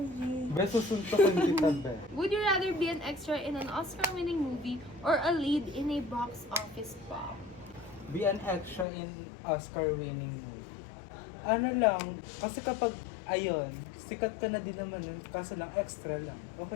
D? Be, susuntokin kita, be. Would you rather be an extra in an Oscar-winning movie or a lead in a box office bomb? Be an extra in Oscar-winning movie. Ano lang, kasi kapag, ayun, sikat ka na din naman, kaso lang extra lang.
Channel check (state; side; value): drops out; right; at 8.8 s